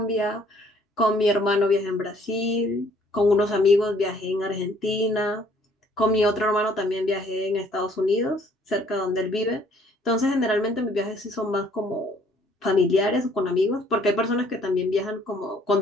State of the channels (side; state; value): both; normal; correlation 0.61